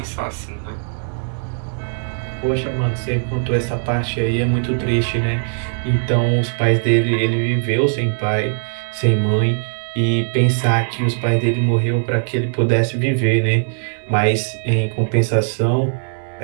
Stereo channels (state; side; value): silent; left; digital silence